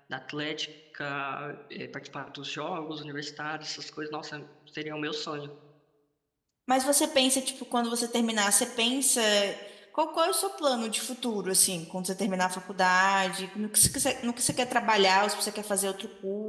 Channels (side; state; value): both; identical; correlation 1.00